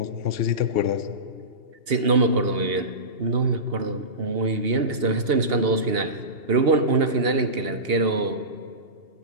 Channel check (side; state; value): left; late; 2.8 ms